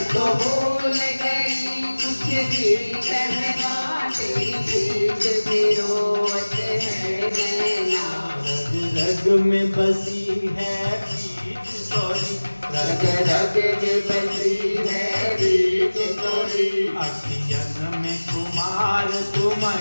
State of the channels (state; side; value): inverted; both; correlation -1.00